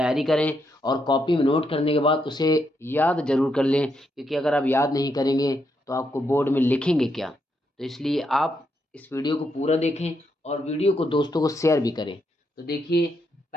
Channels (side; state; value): both; normal; correlation 0.79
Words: करें और कॉपी में नोट करने के बाद उसे याद ज़रूर कर लें, क्योंकि अगर आप याद नहीं करेंगे तो आपको बोर्ड में लिखेंगे क्या। तो इसलिए आप इस वीडियो को पूरा देखें और वीडियो को दोस्तों को शेयर भी करें। तो देखिए,